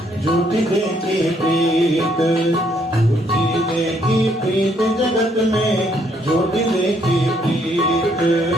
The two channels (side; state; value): both; normal; correlation 0.70